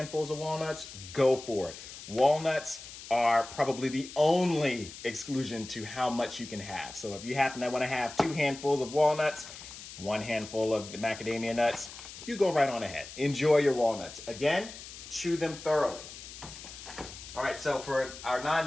of walnuts, go for it. Walnuts are probably the only exclusion to how much you can have. So if you happen to want to have 2 handfuls of walnuts, 1 handful of the macadamia nuts, you go right on ahead. Enjoy your walnuts. Again, chew them thoroughly. All right, so for our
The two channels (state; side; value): noise; left; hiss, 14 dB below the sound